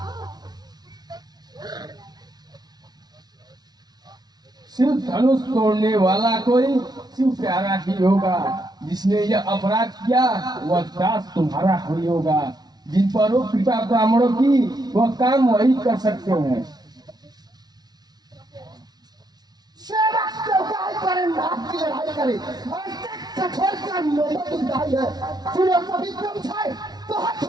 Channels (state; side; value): late; left; 0.19 ms